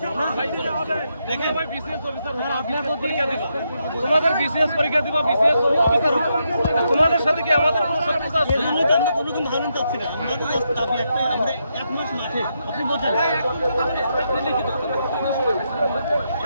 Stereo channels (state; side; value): inverted; both; correlation -0.81